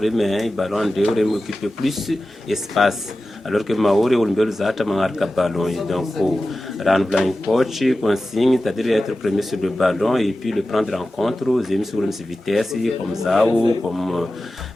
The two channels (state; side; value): normal; both; correlation 0.95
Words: un ballon de j'ai m'occupe plus espace. Alors que Maori ou le Zata marque ballon. Donc, rendre un coach, consigne, c'est-à-dire être premier sur le ballon et puis le prendre en compte. J'ai mis sur une vitesse comme Zao, comme